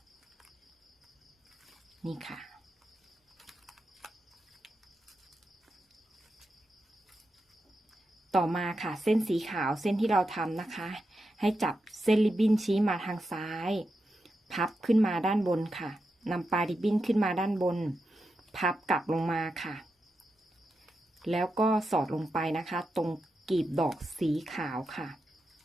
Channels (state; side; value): normal; both; correlation 0.88